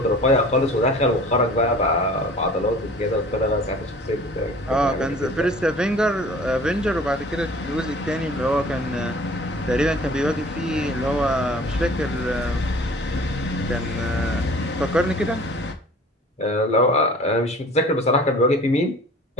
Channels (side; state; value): both; normal; correlation 0.46